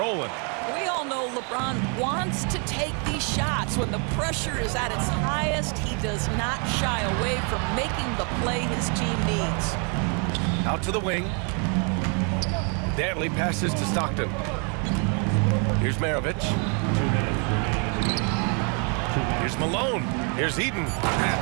We all know LeBron wants to take these shots. When the pressure is at its highest, he does not shy away from making the play his team needs. Out to the wing. Dantley passes to Stockton. Here's Maravich. Here's Malone. Here's Eden.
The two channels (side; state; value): left; quieter; 37.5 dB